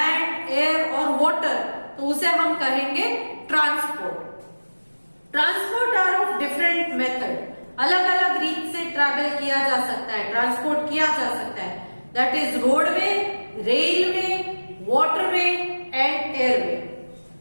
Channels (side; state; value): both; inverted; correlation -1.00